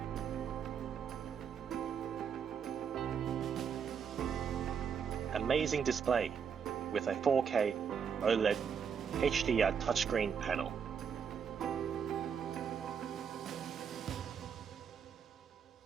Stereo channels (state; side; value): quieter; left; 7.1 dB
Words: Amazing display with a 4K OLED HDR touchscreen panel.